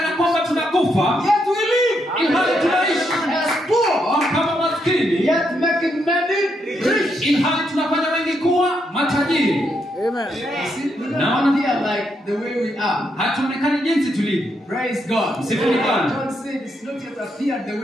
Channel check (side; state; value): both; normal; correlation 0.79